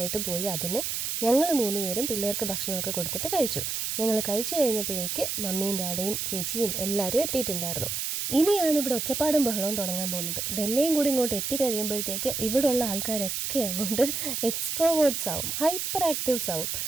പോയി അതിന് ഞങ്ങൾ 3 പേരും പിള്ളേർക്ക് ഭക്ഷണമൊക്കെ കൊടുത്തിട്ട് കഴിച്ചു. ഞങ്ങൾ കഴിച്ചു കഴിഞ്ഞപ്പോഴേക്ക് മമ്മിയും ഡാഡിയും ചേച്ചിയും എല്ലാവരും എത്തിയിട്ടുണ്ടായിരുന്നു. ഇനിയാണ് ഇവിടെ ഒച്ചപ്പാടും ബഹളവും തുടങ്ങാൻ പോകുന്നത്. ഡൽഹിയും കൂടി ഇങ്ങോട്ട് എത്തിക്കഴിയുമ്പോഴത്തേക്ക് ഇവിടെയുള്ള ആൾക്കാരൊക്കെ അങ്ങോട്ട് എക്സ്ട്രോവേർട്സ് ആവും, ഹൈപ്പർ ആക്റ്റീവ്സ് ആവും.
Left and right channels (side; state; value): right; noise; hiss, 2 dB below the sound